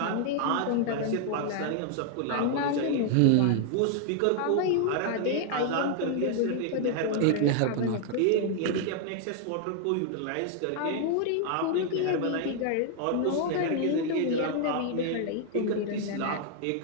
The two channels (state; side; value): different; both; correlation 0.00